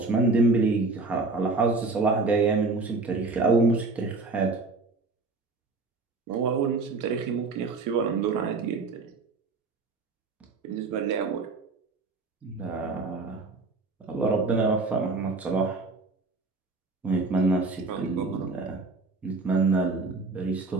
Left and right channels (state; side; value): quieter; left; 3.7 dB